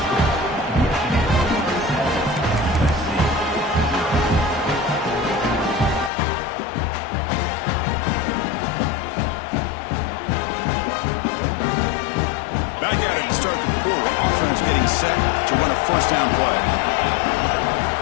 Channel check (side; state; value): right; drops out; at 6.1 s